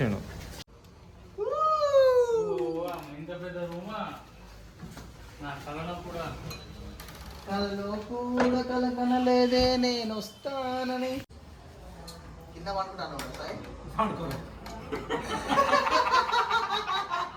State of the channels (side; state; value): both; identical; correlation 1.00